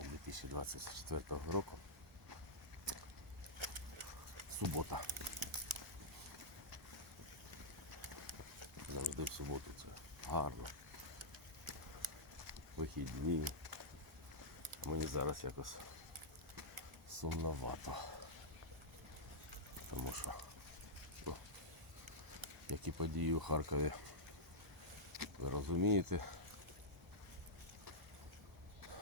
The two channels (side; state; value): both; normal; correlation -0.10